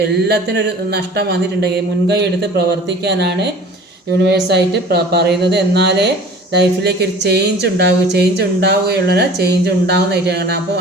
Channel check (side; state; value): both; normal; correlation 0.45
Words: എല്ലാത്തിനും ഒരു നഷ്ടം വന്നിട്ടുണ്ടെങ്കിൽ മുൻകൈ എടുത്ത് പ്രവർത്തിക്കാനാണ് യൂണിവേഴ്സായിട്ട് പറയുന്നത്. എന്നാലേ ലൈഫിലേക്ക് ഒരു ചേഞ്ച് ഉണ്ടാവുകയുള്ളൂ, ചേഞ്ച് ഉണ്ടാകുന്നതായിട്ടാണ്. അപ്പോൾ